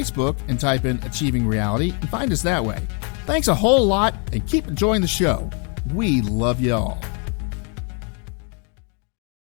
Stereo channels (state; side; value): quieter; right; 37.4 dB